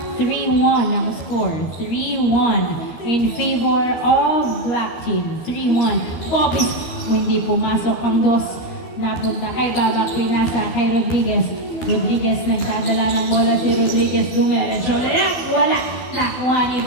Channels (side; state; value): right; late; 13 ms